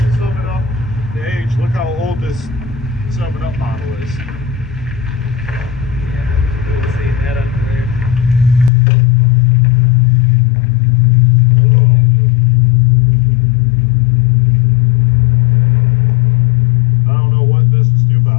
sum it up, the age. Look how old this 7-Up bottle is. Yeah, cool seeing that under there.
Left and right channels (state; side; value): drops out; right; at 8.7 s